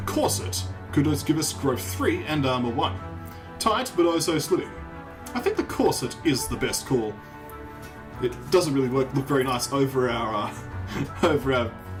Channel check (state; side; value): identical; both; correlation 1.00